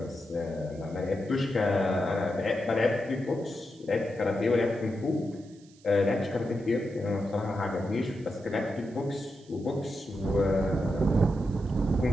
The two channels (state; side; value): noise; right; hiss, 28 dB below the sound